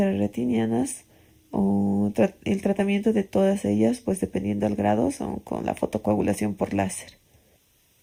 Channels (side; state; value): both; identical; correlation 1.00